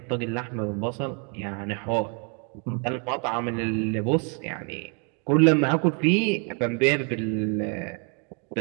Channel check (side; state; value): left; quieter; 36.9 dB